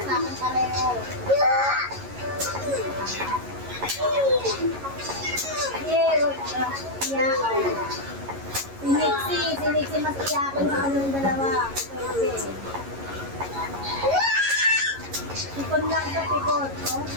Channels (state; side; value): late; left; 11 ms